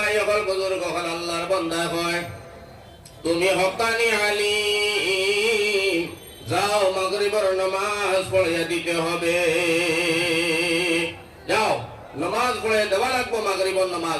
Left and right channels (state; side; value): identical; both; correlation 1.00